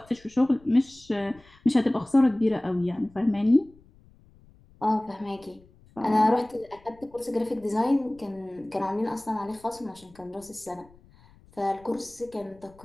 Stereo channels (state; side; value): noise; left; rumble, 27 dB below the sound